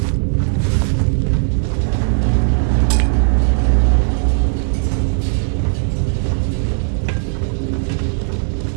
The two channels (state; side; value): silent; left; 68 dB below the other